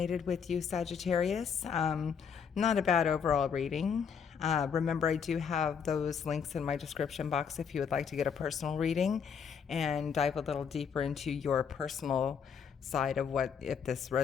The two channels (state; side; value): quieter; right; 6.9 dB